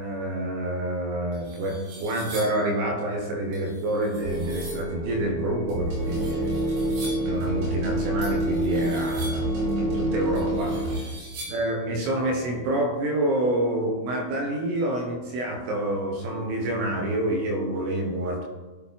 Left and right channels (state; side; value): late; left; 24 ms